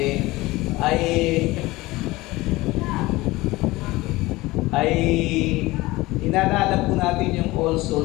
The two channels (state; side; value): quieter; right; 20.0 dB